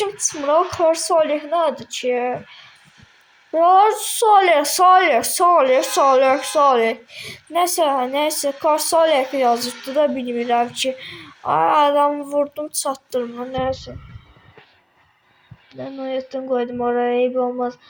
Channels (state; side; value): identical; both; correlation 1.00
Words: çıxmır o Korsoli nədir ki? Korsoli. Neyse Korsoli yazıbdı da bilmirəm ki. Ay adamı vurdum çatdırma neyse. Ben noyatdan koydum oraya eyb olmaz.